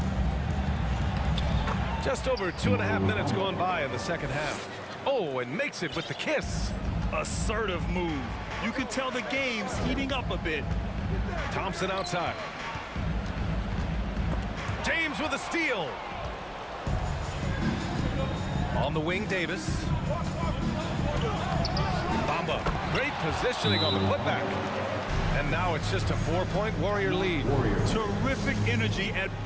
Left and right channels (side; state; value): both; identical; correlation 1.00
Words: Just over 2.5 minutes going by in the second half. Oh, and makes it with the kiss. Assertive move. You can tell the game's heating up a bit. Thompson outside. James with a steal. On the wing, Davis. Bamba, great positioning on the putback. And now it's just a 4-point Warrior lead. Terrific energy at